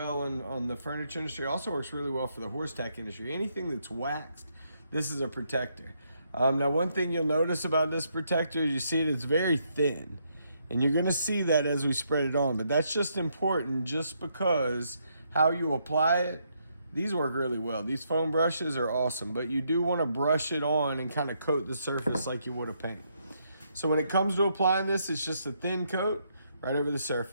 on the furniture industry. Also works really well for the horse tack industry. Anything that's waxed, this is a protector. Now, one thing you'll notice about this protector is you see it's very thin. And you're gonna see that as we spread it on. But that's just important just because how you apply it, these work really well. These foam brushes are awesome. But you do wanna brush it on and kind of coat the surface like you would a paint. So when it comes to applying this, it's just a thin coat right over the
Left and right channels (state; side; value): inverted; both; correlation -0.75